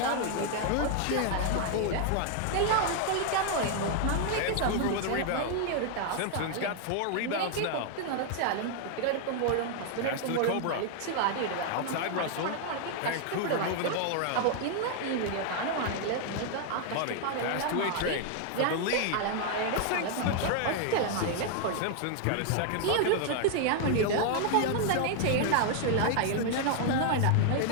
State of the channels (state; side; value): different; both; correlation 0.00